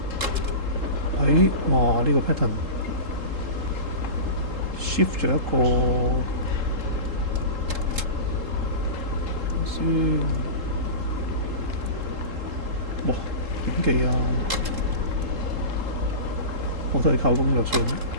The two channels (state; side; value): late; left; 3.7 ms